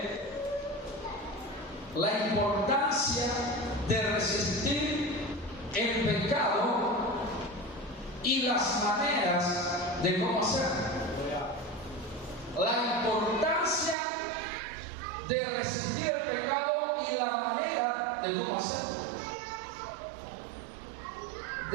la importancia de resistir el pecado y las maneras de cómo hacerlo. La importancia de resistir el pecado y la manera de cómo hacerlo.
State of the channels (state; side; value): drops out; left; at 14.0 s